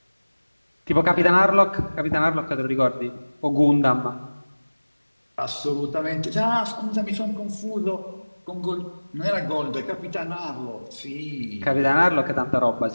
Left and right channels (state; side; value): inverted; both; correlation -1.00